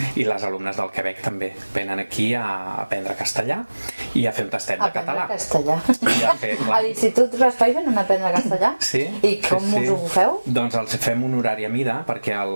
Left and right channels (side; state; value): both; inverted; correlation -1.00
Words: I les alumnes del Quebec també venen aquí a aprendre castellà i a fer un tastet de català. Aprendre castellà. A l'Institut Raspall venen a aprendre castellà? Sí. I com us ho feu? Doncs els fem un horari a mida, perquè